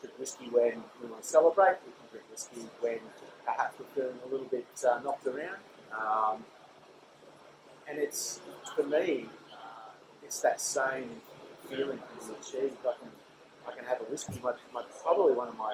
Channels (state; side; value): identical; both; correlation 1.00